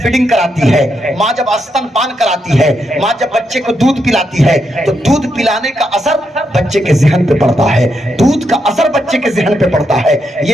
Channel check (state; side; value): normal; both; correlation 0.81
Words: فیڈنگ کراتی ہے, ماں جب استن پان کراتی ہے, ماں جب بچے کو دودھ پلاتی ہے تو دودھ پلانے کا اثر بچے کے ذہن پہ پڑتا ہے, دودھ کا اثر بچے کے ذہن پہ پڑتا ہے.